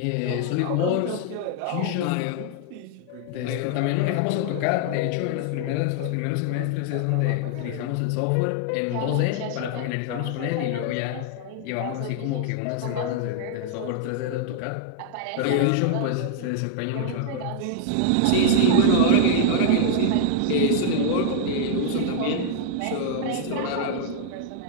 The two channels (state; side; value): different; both; correlation 0.00